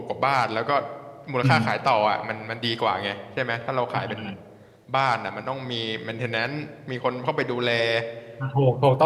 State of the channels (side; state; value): both; identical; correlation 1.00